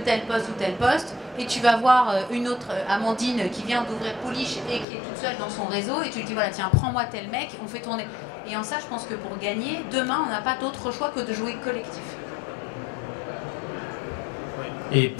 tel poste ou tel poste, et tu vas voir une autre Amandine qui vient d'ouvrir Pouliche et qui est toute seule dans son réseau, et tu lui dis, voilà, tiens, prends-moi tel mec, on fait tourner. Et en ça, je pense que pour gagner, demain, on n'a pas d'autre choix que de jouer collectif. Et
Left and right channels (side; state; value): right; drops out; at 4.9 s